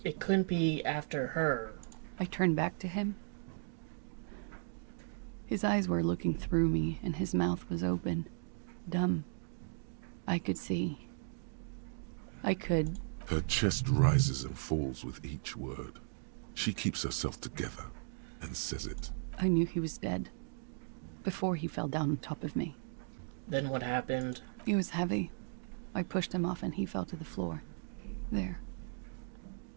couldn't be after her. I turned back to him. His eyes were looking through me, and his mouth was open. Dumb. I could see. I could... Her chest rises and falls with each word. She keeps herself together and says it. I knew he was dead. Before he fell down on top of me. Then what happened? He was heavy. I pushed him off and he fell to the floor. There.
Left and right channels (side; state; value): left; silent; digital silence